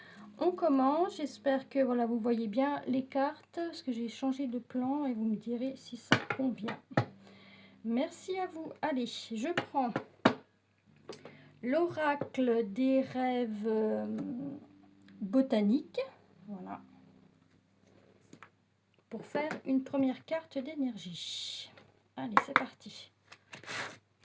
On commence, j'espère que voilà, vous voyez bien les cartes, parce que j'ai changé de plan et vous me direz si ça convient. Merci à vous. Allez, je prends l'oracle des rêves botaniques, voilà, pour faire une première carte d'énergie. Allez, c'est parti.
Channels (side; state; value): both; identical; correlation 1.00